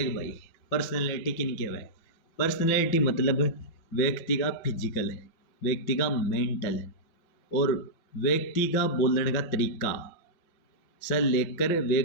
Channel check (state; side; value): late; right; 5.7 ms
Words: भाई, पर्सनैलिटी किन के है? पर्सनैलिटी मतलब व्यक्ति का फिजिकल, व्यक्ति का मेंटल और व्यक्ति का बोलने का तरीका से लेकर